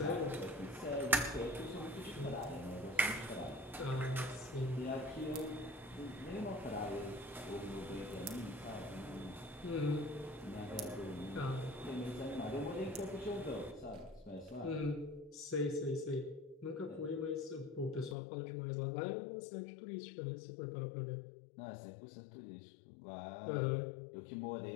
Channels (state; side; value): drops out; right; at 18.2 s